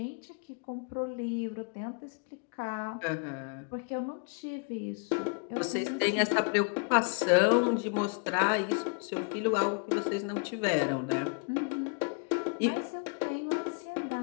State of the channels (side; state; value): right; quieter; 37.6 dB